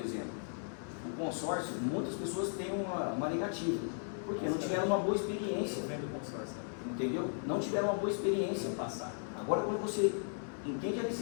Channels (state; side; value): silent; right; 54 dB below the other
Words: O consórcio, muitas pessoas têm uma negativa, porque não tiveram uma boa experiência. Vendo consórcio. Entendeu? Não tiveram uma boa experiência. Passar. Agora, quando você entende a